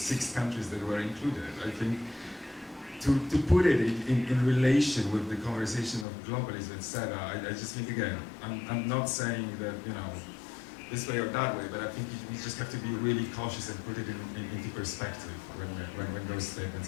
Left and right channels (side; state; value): right; drops out; at 6.1 s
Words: countries that were included. I think to put it in relation with the conversation of globalism, etc., I just think, again, I'm not saying that, you know, this way or that way, but I think we just have to be really cautious and put it into perspective when those